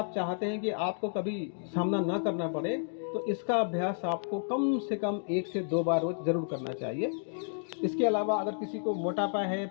चाहते हैं कि आपको कभी सामना ना करना पड़े, तो इसका अभ्यास आपको कम से कम 1 से 2 बार रोज जरूर करना चाहिए। इसके अलावा अगर किसी को मोटापा है,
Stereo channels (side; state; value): right; silent; digital silence